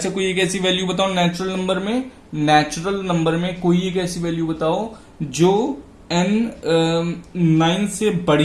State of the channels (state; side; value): identical; both; correlation 1.00